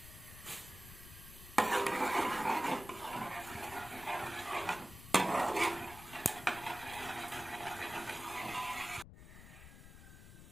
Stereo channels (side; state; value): left; noise; rumble, 15 dB below the sound